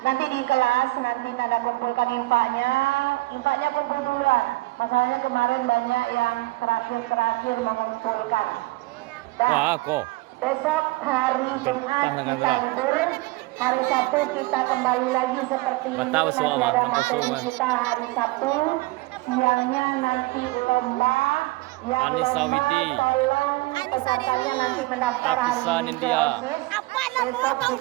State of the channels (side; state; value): left; quieter; 21.6 dB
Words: nanti di kelas, nanti Nanda kumpulkan infaknya kumpul duluan. Masalahnya kemarin banyak yang terakhir mengumpulkan. Wah, kok. Besok hari Jumat kita libur, hari Sabtu kita kembali lagi seperti ini. Betul, Masih semua, ada Bang. materi Betul, kita hari Sabtu, siangnya nanti lomba. Yang Anissa lomba Widi. tolong pesertanya nanti mendaftar hari Apisan ini. India. Besok